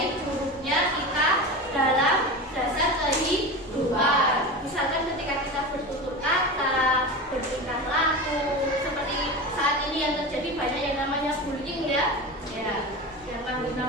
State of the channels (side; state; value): both; normal; correlation 0.27